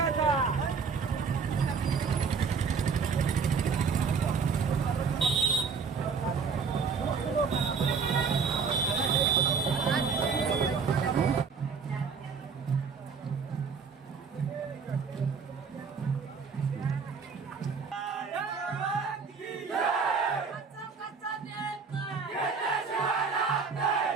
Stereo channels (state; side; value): quieter; left; 5.5 dB